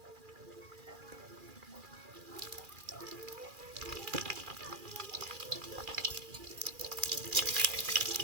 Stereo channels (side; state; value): left; late; 2.4 ms